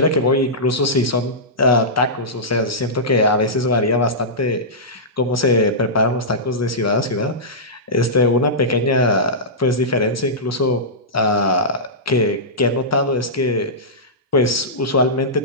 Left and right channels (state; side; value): normal; both; correlation -0.15